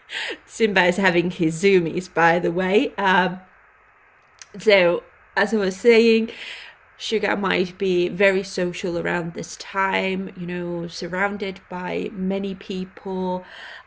Simba is having his zoomies, by the way. So as I was saying, Sugar might be very social around this time, you know, surrounded by many people,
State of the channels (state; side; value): identical; both; correlation 1.00